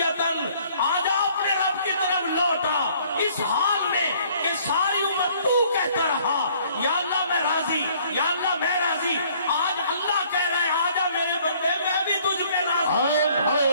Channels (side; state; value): both; inverted; correlation -0.59